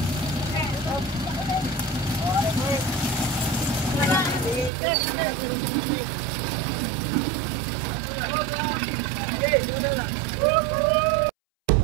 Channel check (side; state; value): left; drops out; at 4.7 s